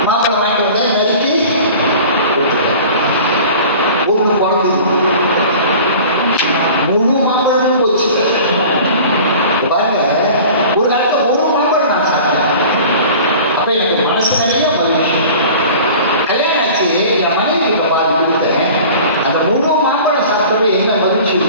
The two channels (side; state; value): both; inverted; correlation -0.42